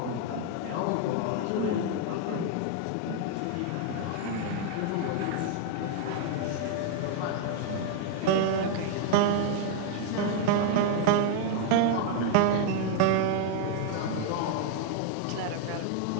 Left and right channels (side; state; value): both; different; correlation 0.00